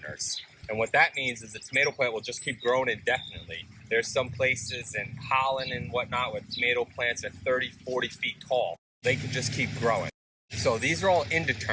And what that means is the tomato plant will just keep growing indefinitely. There's some places in Holland and whatnot where tomato plants are 30, 40 feet tall. They can just keep growing. So these are all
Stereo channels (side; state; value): both; identical; correlation 1.00